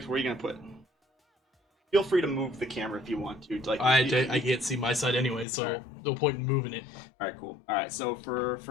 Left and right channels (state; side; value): drops out; right; at 5.5 s